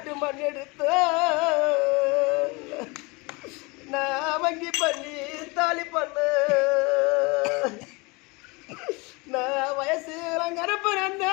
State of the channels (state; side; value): quieter; right; 26.8 dB